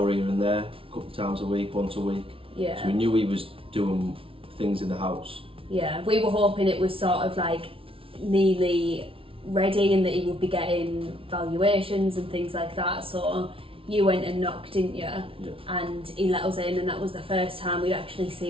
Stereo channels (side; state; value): left; late; 0.26 ms